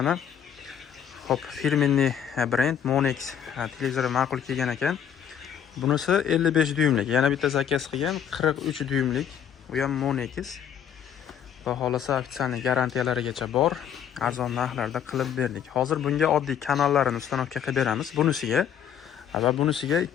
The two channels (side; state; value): right; quieter; 8.7 dB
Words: hop, firmenniy brend Monex televizori ma'qul kelgan ekan. Bunisi 55 dyumlik. Yana bitta zakaz qilgan 43 dyumlik. U ham Monex. Va xolasa ofitsialniy garantiyalarigacha bor. Arzon narxlarda qilib berdik. Hozir bunga oddiy kanallarni ustanovka qilib beramiz. Bunisiga va bunisiga